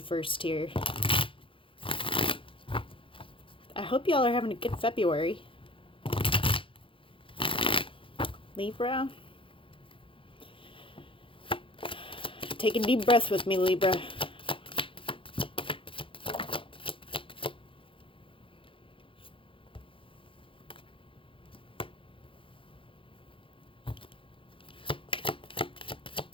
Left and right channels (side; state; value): right; late; 0.25 ms